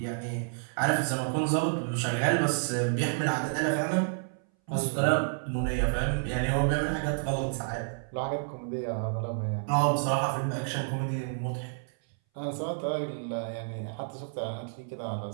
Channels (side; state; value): left; silent; 58 dB below the other